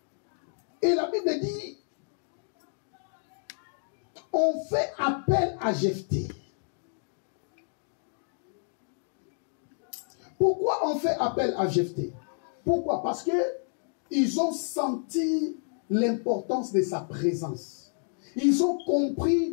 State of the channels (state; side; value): silent; right; 58 dB below the other